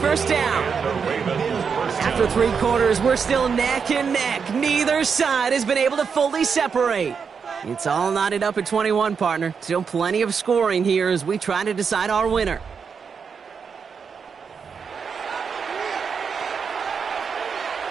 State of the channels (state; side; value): quieter; left; 6.1 dB